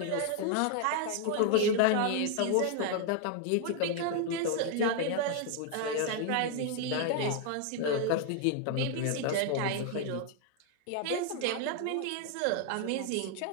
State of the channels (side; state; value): both; different; correlation 0.00